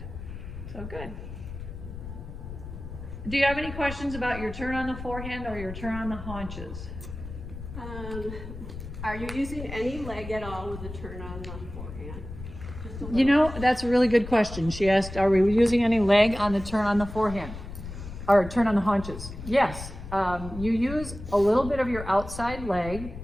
So good. Do you have any questions about your turn on the forehand or your turn on the haunches? Are you using any leg at all with the turn on the forehand? You know, that's a really good question. She asked, are we using any leg on the turn on the forehand? Or turn on the haunches? Yes. You use a little bit of your outside leg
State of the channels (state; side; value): noise; left; rumble, 11 dB below the sound